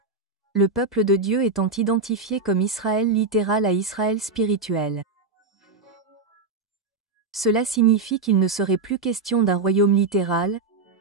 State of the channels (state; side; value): quieter; left; 4.1 dB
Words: le peuple de Dieu étant identifié comme Israël littéral à Israël spirituel. Cela signifie qu'il ne serait plus question d'un royaume littéral,